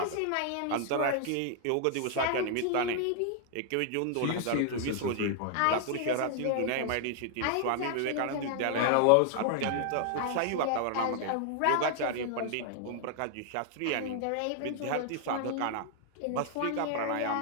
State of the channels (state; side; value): different; both; correlation 0.00